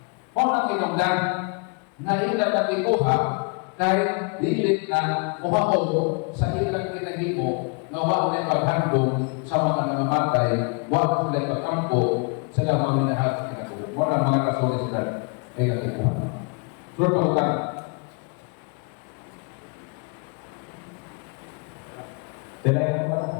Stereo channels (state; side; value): quieter; right; 35.5 dB